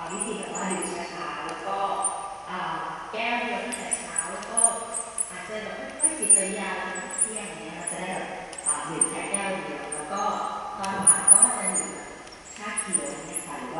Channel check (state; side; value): identical; both; correlation 1.00